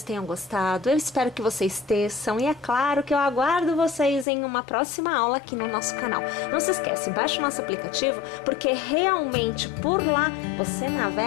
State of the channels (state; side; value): drops out; right; at 4.2 s